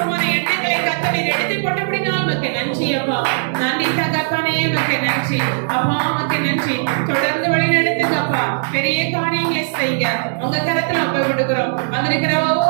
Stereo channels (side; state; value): left; silent; digital silence